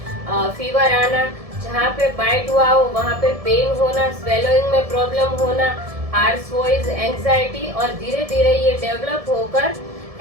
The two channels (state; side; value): late; left; 1.7 ms